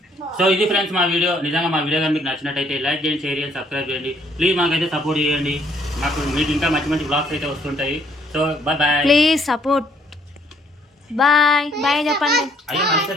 సో ఇది ఫ్రెండ్స్ మా వీడియో. నిజంగా మా వీడియో కానీ మీకు నచ్చినట్టయితే లైక్ చేయండి, షేర్ చేయండి, సబ్స్క్రైబ్ చేయండి. ప్లీజ్ మాకైతే సపోర్ట్ చేయండి. మీకు ఇంకా మంచి మంచి బ్లాగ్స్ అయితే వస్తుంటాయి. So bye bye, please support. Bye bye చెప్పండి. అయ్యో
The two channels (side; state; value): both; normal; correlation 0.65